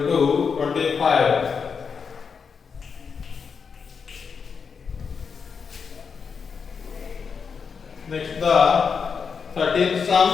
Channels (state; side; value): quieter; right; 5.9 dB